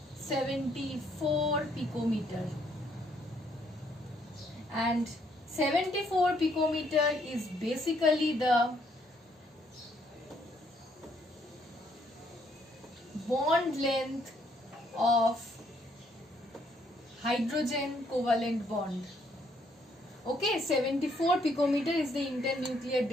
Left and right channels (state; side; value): normal; both; correlation 0.70